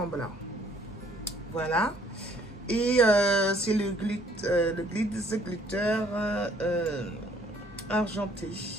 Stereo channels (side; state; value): both; normal; correlation 0.61